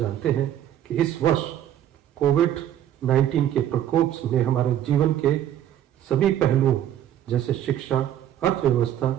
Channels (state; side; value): quieter; left; 11.1 dB